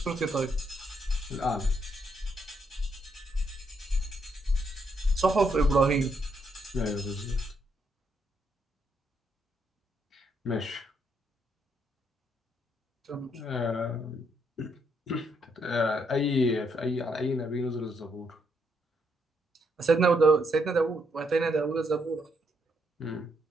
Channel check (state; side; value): normal; both; correlation 0.76